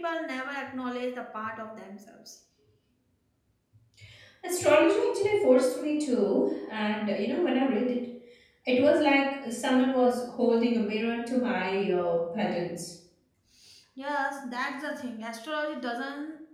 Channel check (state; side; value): identical; both; correlation 1.00